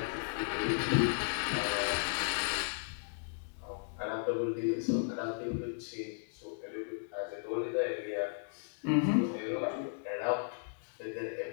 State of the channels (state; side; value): silent; right; digital silence